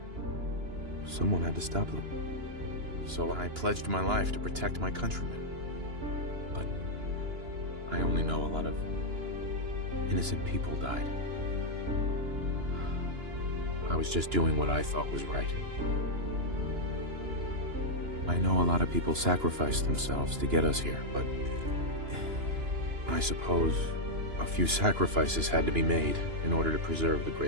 Someone had to stop them. So I pledged my life to protect my countrymen. But I only know a lot of innocent people died. I was just doing what I thought was right. I know a lot of people sacrificed themselves to get us here, but I suppose a few sacrifices had to be made in order to preserve the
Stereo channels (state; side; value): late; left; 2.9 ms